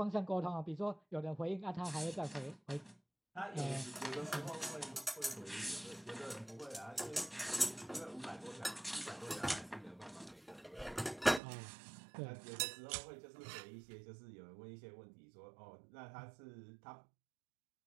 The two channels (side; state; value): left; drops out; at 11.4 s